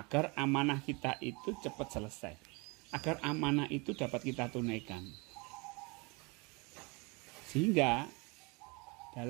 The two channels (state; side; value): quieter; left; 28.6 dB